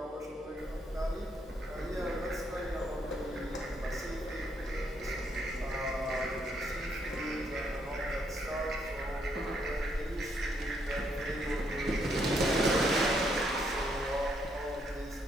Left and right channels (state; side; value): normal; both; correlation 0.73